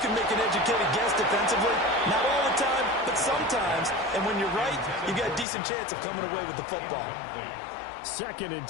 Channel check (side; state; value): right; drops out; at 5.5 s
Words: make an educated guess defensively, not all the time, but sometimes. And when you're right, you got a decent chance of coming away with the football. 2nd and